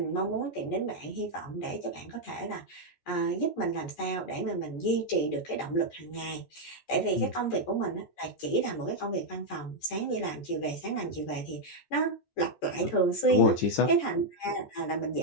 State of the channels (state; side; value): late; right; 14 ms